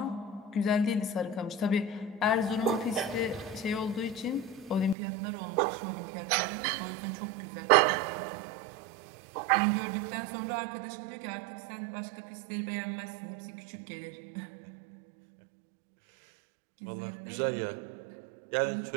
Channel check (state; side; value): drops out; left; at 5.0 s